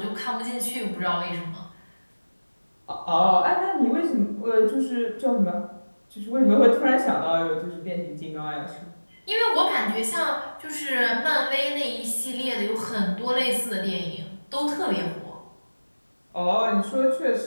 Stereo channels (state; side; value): inverted; both; correlation -1.00